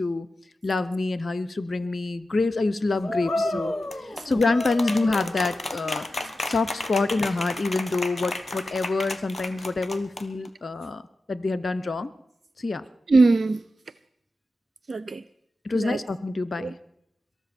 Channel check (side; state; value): both; normal; correlation 0.92